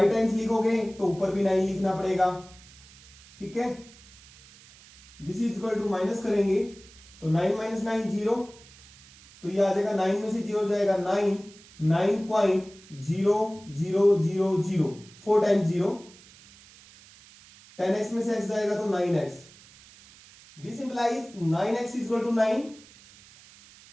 टाइम्स लिखोगे तो ऊपर भी 9 लिखना पड़ेगा, ठीक है। This is equal to minus करेंगे तो 9 माइनस 9 0, तो ये आ जाएगा 9 में से 0 जाएगा 9, 9.0000, 4 टाइम्स 0, 10x में से x जाएगा तो 9x। This implies 9x is equal to 9,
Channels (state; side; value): noise; right; hiss, 23 dB below the sound